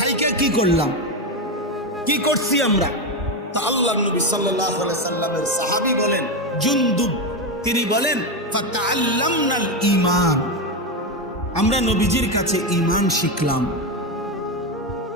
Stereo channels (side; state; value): both; normal; correlation 0.11